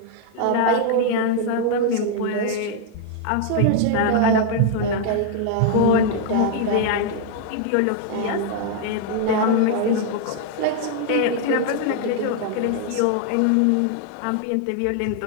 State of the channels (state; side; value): different; both; correlation 0.00